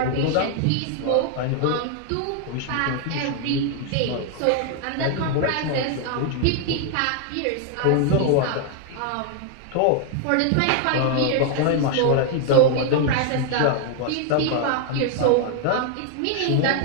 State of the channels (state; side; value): different; both; correlation 0.00